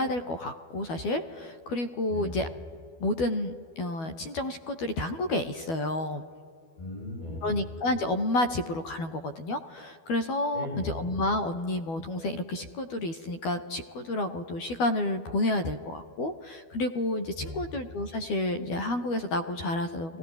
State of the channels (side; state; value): right; late; 12 ms